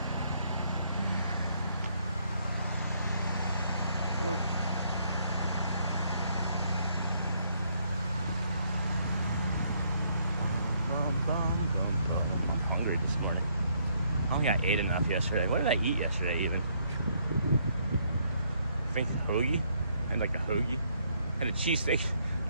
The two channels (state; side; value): inverted; both; correlation -0.70